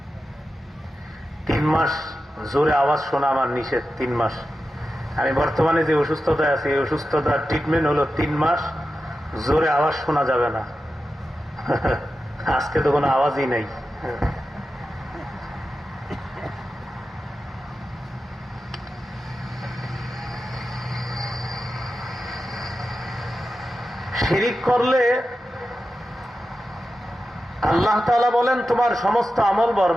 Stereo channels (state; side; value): normal; both; correlation 0.92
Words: 3 মাস জোরে আওয়াজ শোনা আমার নিষেধ। 3 মাস। আমি বর্তমানে যে অসুস্থতায় আছি, এই অসুস্থতার ট্রিটমেন্ট হলো 3 মাস জোরে আওয়াজ শোনা যাবে না। আজকে তো কোনো আওয়াজই নেই। শিরিক করলে আল্লাহ তাআলা বলেন তোমার সমস্ত আমল